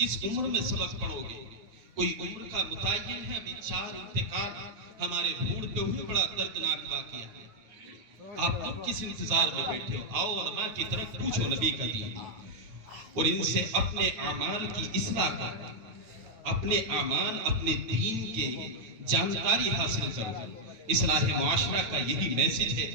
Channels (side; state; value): left; late; 9.1 ms